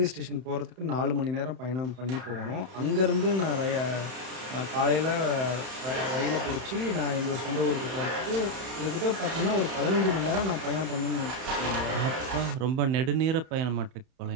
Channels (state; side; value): late; left; 31 ms